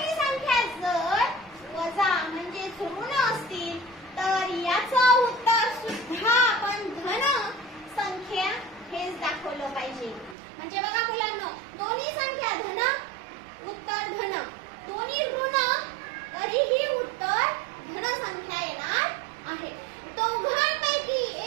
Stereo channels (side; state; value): left; drops out; at 10.4 s